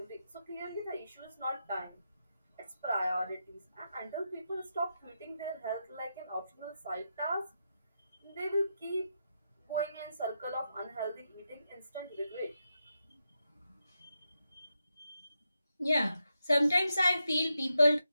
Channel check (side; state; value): both; inverted; correlation -0.85